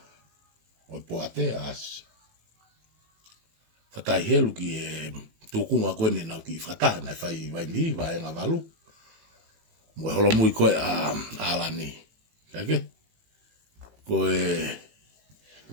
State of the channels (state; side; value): late; left; 18 ms